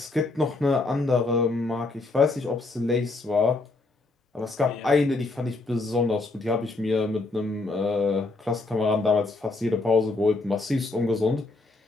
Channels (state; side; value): quieter; right; 3.3 dB